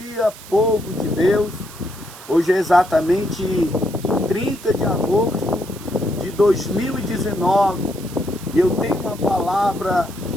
povo de Deus. Hoje é exatamente 30 de agosto de 2019 e eu tenho uma palavra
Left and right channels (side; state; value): right; noise; hiss, 17 dB below the sound